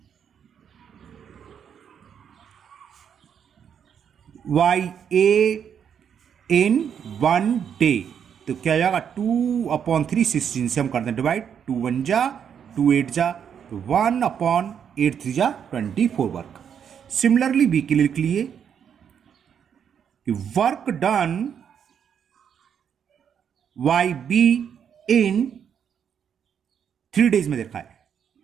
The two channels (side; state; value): left; quieter; 8.0 dB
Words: by A in 1 day, तो क्या जाएगा? 2/3 16 से हम करते हैं डिवाइड, 2 1 जा 2 8 जा, तो 1/8 3 जा 24 वर्क। सिमिलरली बी के लिए लिख लिए कि work done by B in 3 days में देखा है,